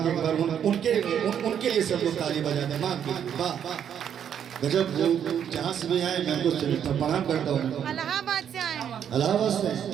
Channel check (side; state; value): left; quieter; 8.8 dB